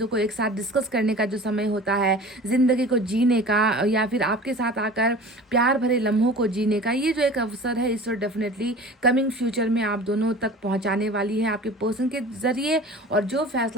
को एक साथ डिस्कस करने का जो समय होता है, ज़िंदगी को जीने का या फिर आपके साथ आकर प्यार भरे लम्हों को जीने का, ये जो एक अवसर है इस वक्त डेफिनेटली कमिंग फ्यूचर में आप दोनों तक पहुंचाने वाली है आपके पर्सन के ज़रिए। और जो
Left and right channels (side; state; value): both; normal; correlation 0.40